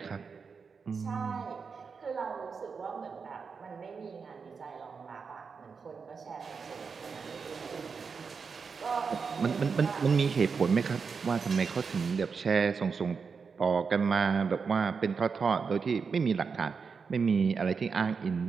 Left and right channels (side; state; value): left; quieter; 5.5 dB